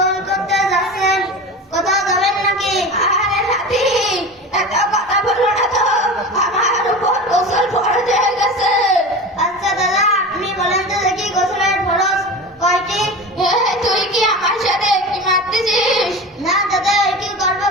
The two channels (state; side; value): normal; both; correlation 0.31